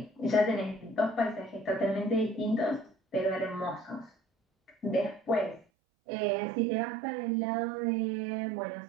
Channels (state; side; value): drops out; left; at 5.7 s